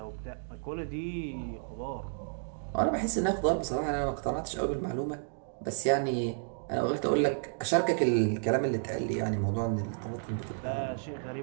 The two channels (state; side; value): silent; left; digital silence